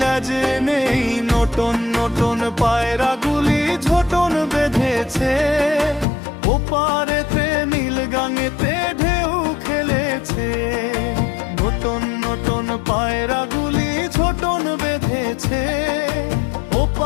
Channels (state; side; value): drops out; right; at 6.1 s